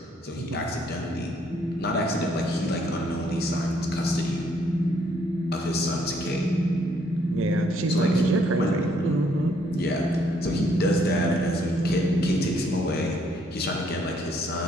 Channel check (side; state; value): both; normal; correlation 0.68